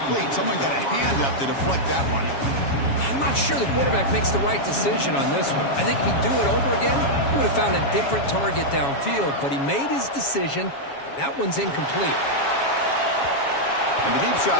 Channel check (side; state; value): right; late; 7.2 ms